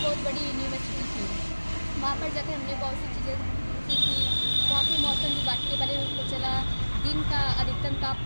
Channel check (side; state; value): both; inverted; correlation -1.00